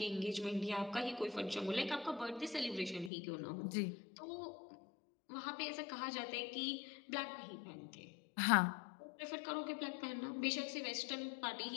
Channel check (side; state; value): right; drops out; at 3.1 s